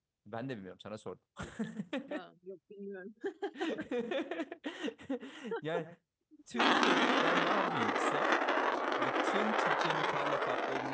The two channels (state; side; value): identical; both; correlation 1.00